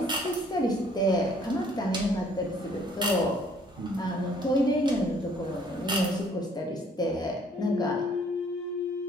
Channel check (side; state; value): both; normal; correlation 0.60